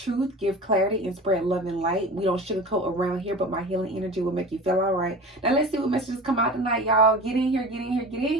give clarity, and spread love and light. We don't sugarcoat around here, but my healing energy will make you feel all right. Now let's see what messages come out tonight, y'all. Get in here, get in here, get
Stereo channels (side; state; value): both; normal; correlation 0.35